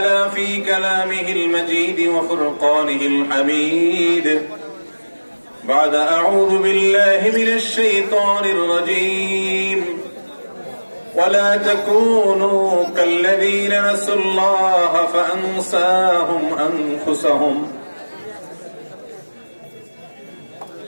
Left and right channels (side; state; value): both; inverted; correlation -1.00